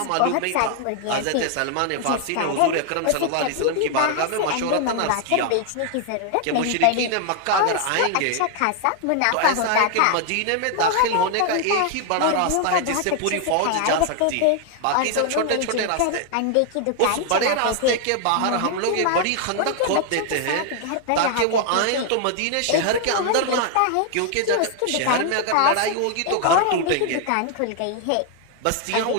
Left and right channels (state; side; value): different; both; correlation 0.00